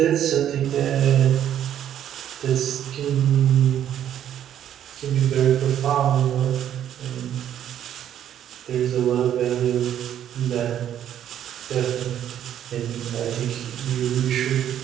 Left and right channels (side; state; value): left; quieter; 10.5 dB